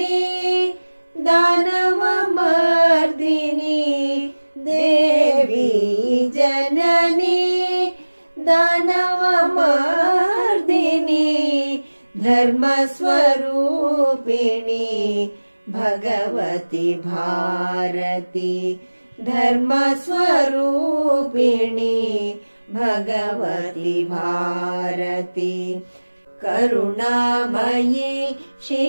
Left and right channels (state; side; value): inverted; both; correlation -1.00